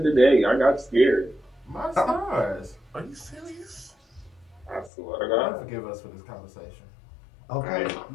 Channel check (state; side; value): drops out; right; at 4.9 s